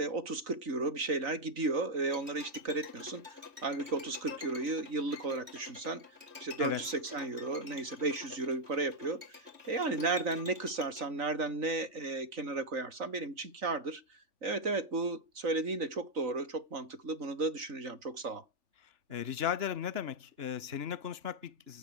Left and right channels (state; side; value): late; left; 3.9 ms